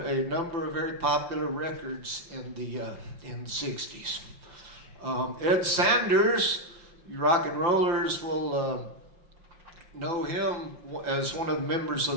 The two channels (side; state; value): left; late; 5.8 ms